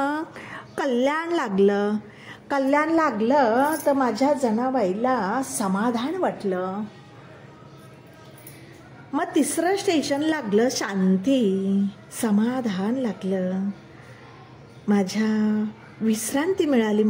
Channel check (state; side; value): identical; both; correlation 1.00